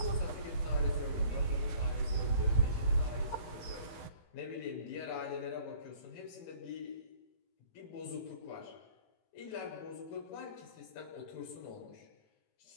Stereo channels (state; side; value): late; right; 18 ms